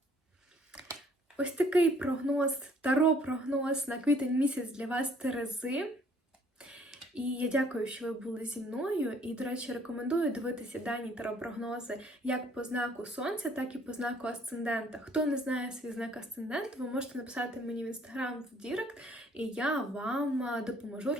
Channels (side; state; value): both; normal; correlation 0.61